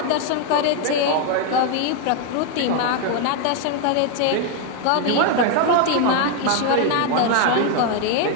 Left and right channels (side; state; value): both; different; correlation 0.01